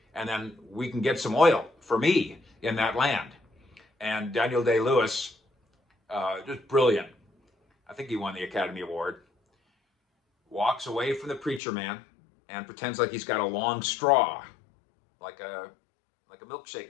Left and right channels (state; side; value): drops out; right; at 11.6 s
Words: and then we can get some oil for me in that land. And Daniel Day-Lewis, just brilliant, I think he won the Academy Award, walks away from the preacher man and pretends like he's got a long straw, like a